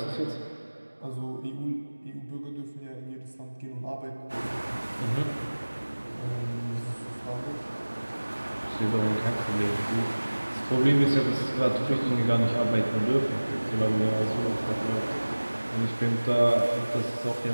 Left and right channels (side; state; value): both; inverted; correlation -1.00